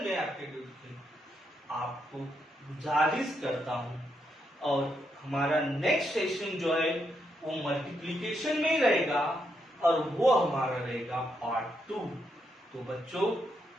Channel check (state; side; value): normal; both; correlation 0.80